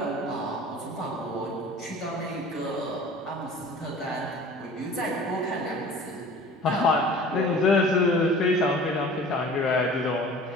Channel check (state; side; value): normal; both; correlation 0.44